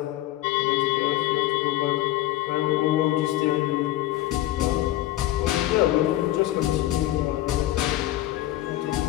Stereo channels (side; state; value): right; quieter; 15.2 dB